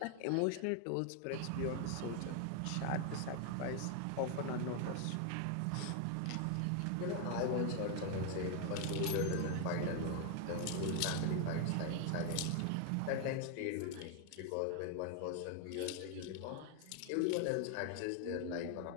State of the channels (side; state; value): both; different; correlation 0.00